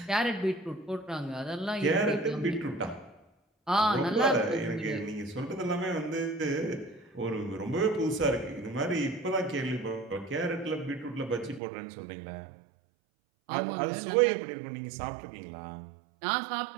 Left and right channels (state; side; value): drops out; left; at 11.6 s